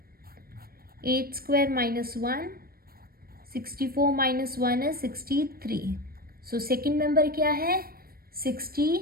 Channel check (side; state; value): left; late; 0.44 ms